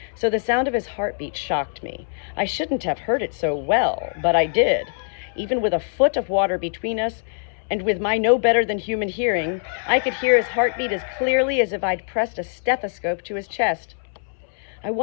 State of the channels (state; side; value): silent; right; 63 dB below the other